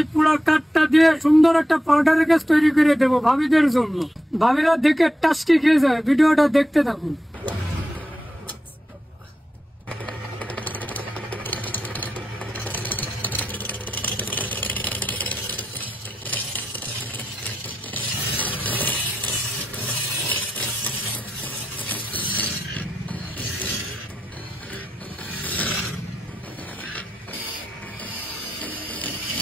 পুরো কাঠটা দিয়ে সুন্দর একটা পাউডার গ্যাস তৈরি করে দেবো ভাবিদের জন্য। ভাবিরা দেখে টাস্কি খেয়ে যায়। ভিডিওটা দেখতে থাকুন।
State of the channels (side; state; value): both; normal; correlation 0.87